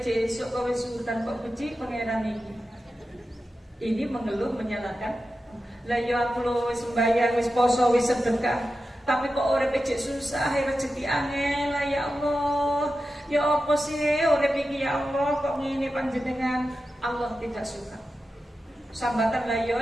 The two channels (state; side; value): normal; both; correlation 0.92